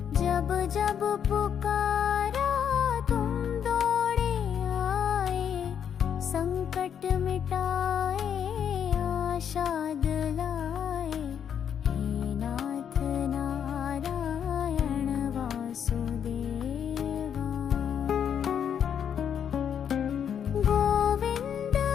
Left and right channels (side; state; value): right; quieter; 8.4 dB